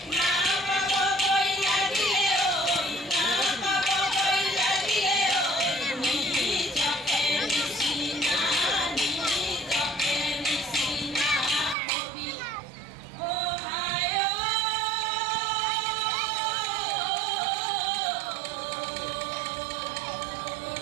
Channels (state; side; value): drops out; left; at 11.8 s